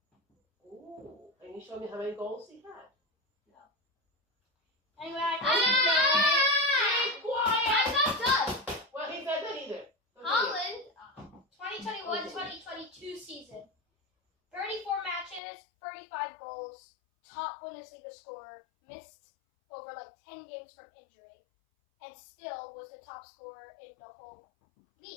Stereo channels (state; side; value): drops out; right; at 15.4 s